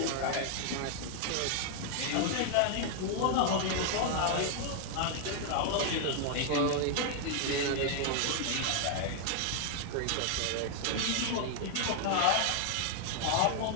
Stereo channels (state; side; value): different; both; correlation 0.00